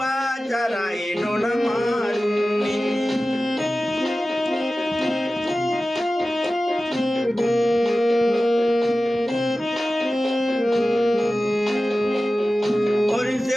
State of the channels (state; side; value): normal; both; correlation 0.95